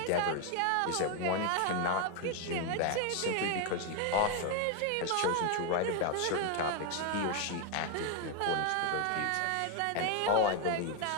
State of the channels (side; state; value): both; different; correlation 0.01